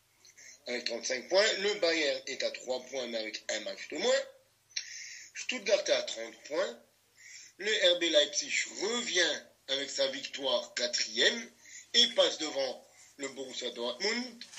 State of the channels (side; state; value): both; identical; correlation 1.00